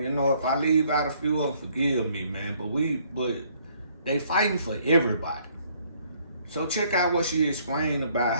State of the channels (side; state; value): both; inverted; correlation -0.64